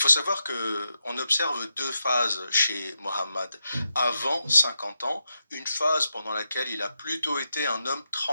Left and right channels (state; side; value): inverted; both; correlation -0.85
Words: savoir que on observe deux phases chez Mohammed. Avant 50 ans, une phase pendant laquelle il a plutôt été un homme